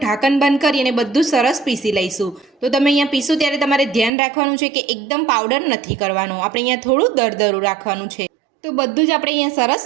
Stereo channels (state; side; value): drops out; left; at 4.1 s